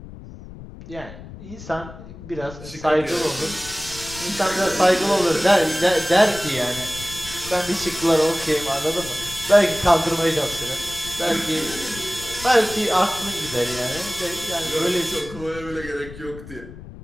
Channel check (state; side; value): noise; left; rumble, 15 dB below the sound